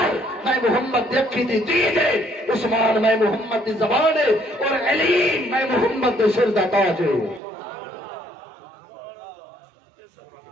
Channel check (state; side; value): drops out; left; at 7.4 s